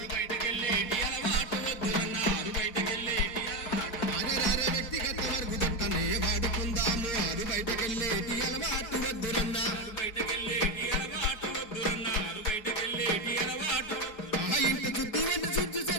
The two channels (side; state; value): right; late; 4.7 ms